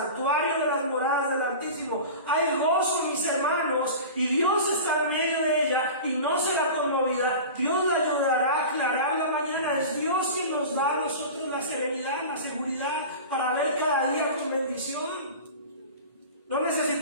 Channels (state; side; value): inverted; both; correlation -0.34